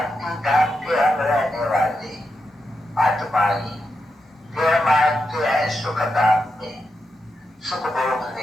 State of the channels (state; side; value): normal; both; correlation 0.86